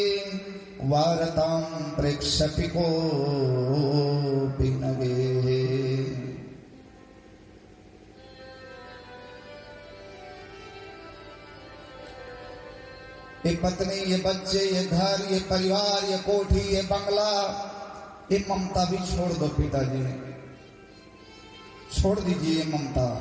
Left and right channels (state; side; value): identical; both; correlation 1.00